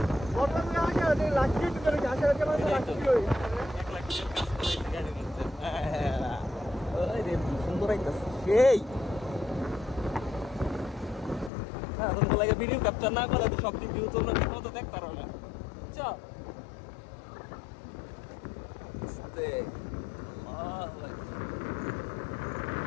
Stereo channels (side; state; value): right; drops out; at 11.5 s